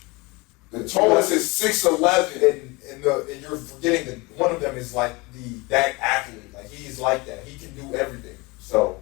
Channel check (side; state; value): right; quieter; 25.1 dB